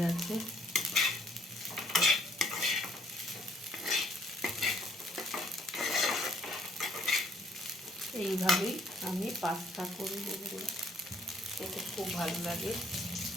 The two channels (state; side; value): normal; both; correlation 0.64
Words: গেছে। এইভাবেই আমি পাস্তা করি বন্ধুরা, খেতে খুব ভালো লাগে।